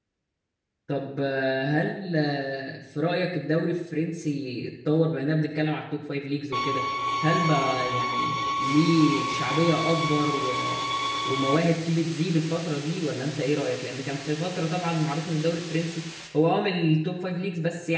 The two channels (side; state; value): both; identical; correlation 1.00